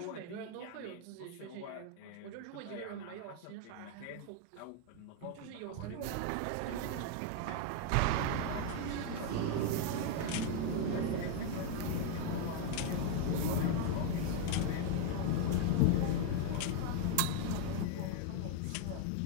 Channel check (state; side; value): different; both; correlation 0.01